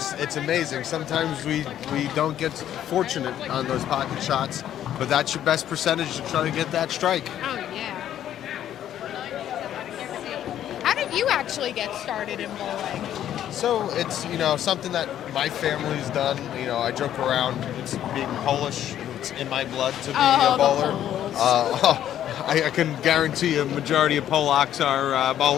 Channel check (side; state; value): right; quieter; 11.1 dB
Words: amazing. Sometimes we don't get fortunate on those pocket shots, but that's your best percentage to try to get that strike. Oh, yeah. How did you actually get started in bowling? So it's, something that my family's done. I joke around, it's being Polish, it's in my blood to be a bowler. I can guarantee a majority of Polacks are